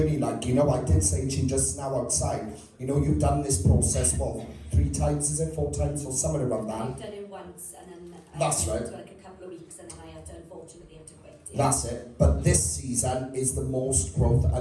Like, you know, I did say to you just now outside, you know, you've done this process, what, 3 times, is it? 4 times, or somewhere around that? I've done it once, and then That's I right. went to like a couple of weeks, and then I had to unfortunately have to quit. That's it. But this season is the most growth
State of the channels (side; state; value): both; identical; correlation 1.00